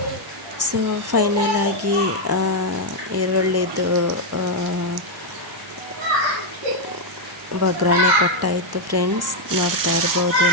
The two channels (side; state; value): both; normal; correlation 0.00